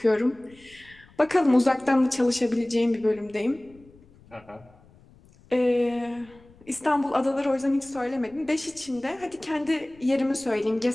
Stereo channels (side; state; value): left; noise; rumble, 27 dB below the sound